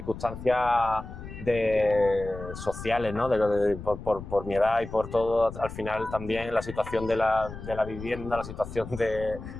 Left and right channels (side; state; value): left; noise; rumble, 11 dB below the sound